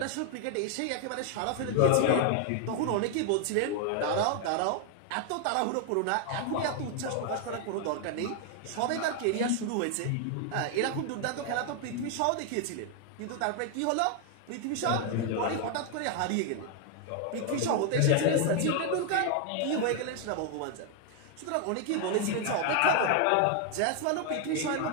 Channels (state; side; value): different; both; correlation 0.00